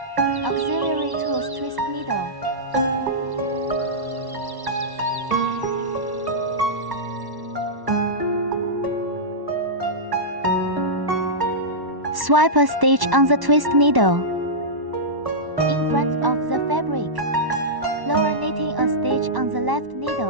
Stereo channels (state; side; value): late; left; 1.1 ms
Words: Auxiliary tools twist needle. Swipe a stitch on the twist needle. In front of the fabric. Lower knitting a stitch on the left